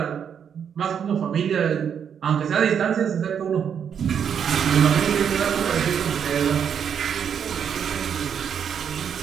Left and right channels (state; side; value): quieter; left; 7.9 dB